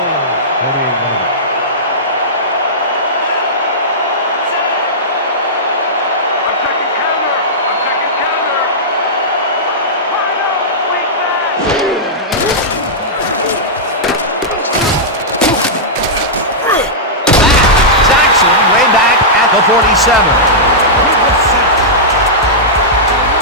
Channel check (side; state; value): both; normal; correlation -0.12